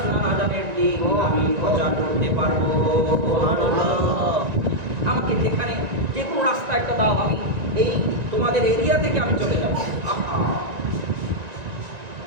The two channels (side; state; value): left; late; 1.9 ms